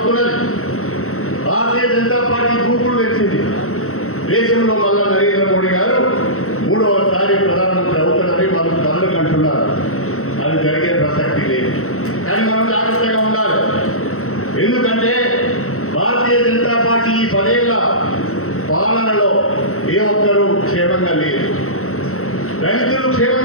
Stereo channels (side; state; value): right; late; 0.63 ms